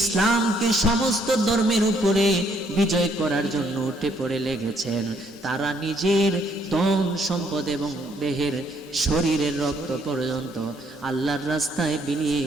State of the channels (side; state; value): both; normal; correlation 0.68